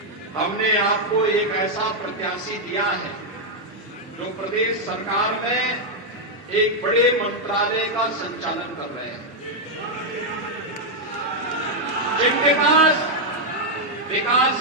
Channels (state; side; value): normal; both; correlation -0.01